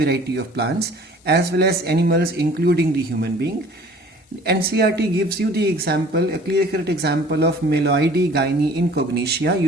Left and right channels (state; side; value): normal; both; correlation 0.50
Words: of plants as well as animals, including the human being. NCERT gives you the example, a clear-cut example of Meloidae gynae incognitia.